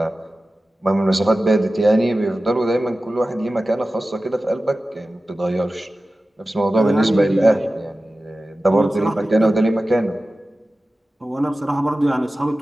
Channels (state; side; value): normal; both; correlation 0.95